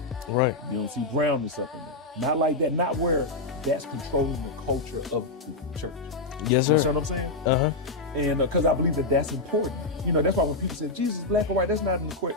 Right. You don't see brownness up in there. Not like that, not where that's controlling the culture of the church. Yes, You sir. understand what I'm saying? Uh-huh. And because I believe that that's important. You know, that's why when people say Jesus is black or white, that's not an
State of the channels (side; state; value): right; quieter; 3.1 dB